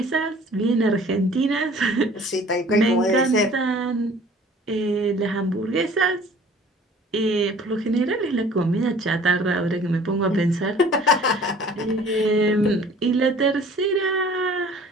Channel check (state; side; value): normal; both; correlation 0.50